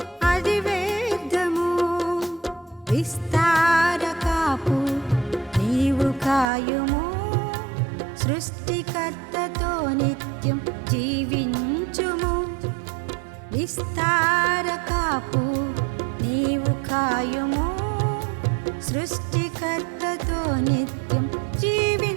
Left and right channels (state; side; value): drops out; left; at 6.5 s